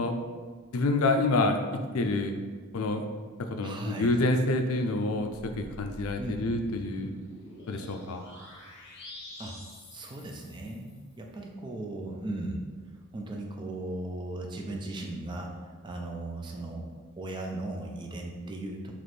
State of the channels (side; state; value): both; normal; correlation 0.38